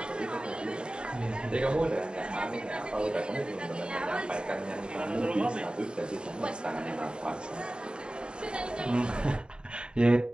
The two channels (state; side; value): late; left; 0.050 ms